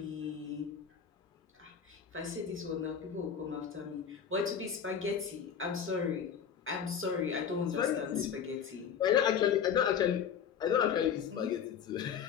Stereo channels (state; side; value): quieter; right; 7.7 dB